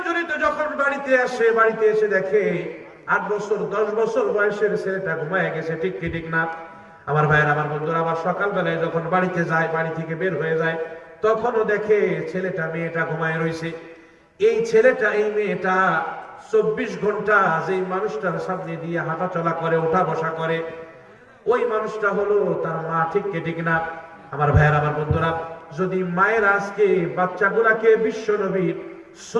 যখন বাড়িতে এসে দেখে 8 বছর 10 বছর বয়সের ছেলেটা ঘুমায় গেছে, ঠিক কি ঠিক না? আমার ভাইয়ের, আমার বন্ধুরা, আবার সকাল বেলায় যখন বাড়িতে যায়, বাড়ি থেকে বের হয়ে যায়, তখনও দেখে ছেলেটা মেয়েটা ঘুমায় রয়েছে। এই ছেলেটা এই মেয়েটা 24 ঘন্টা যেই মানুষটার সামনে দিয়ে হাঁটা চলা করে, ওঠা বসা করে, ওই মানুষটা হলো তার মা, ঠিক কি ঠিক না? আমার ভাইয়ের, আমার বন্ধুরা, যদি মায়ের আজকে বাচ্চাগুলাকে বিশ্বনবীর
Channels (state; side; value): identical; both; correlation 1.00